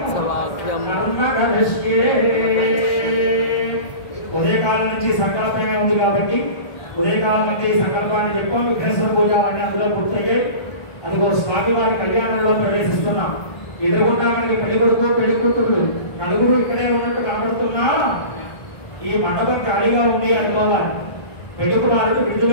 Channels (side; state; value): right; late; 1.2 ms